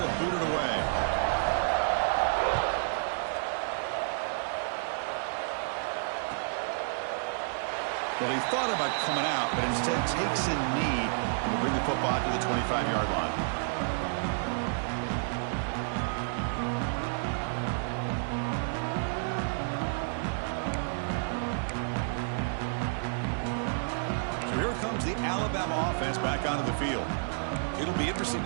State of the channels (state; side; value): silent; left; digital silence